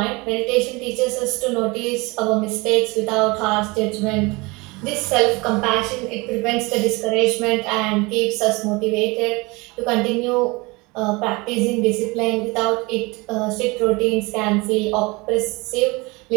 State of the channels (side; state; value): left; quieter; 25.0 dB